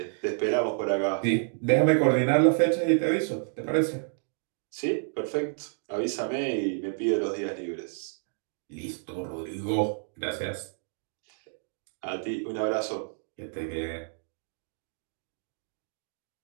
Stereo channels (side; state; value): left; silent; 58 dB below the other